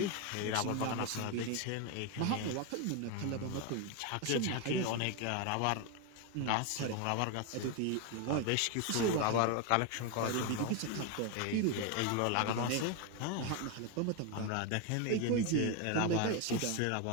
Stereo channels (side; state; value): both; different; correlation 0.02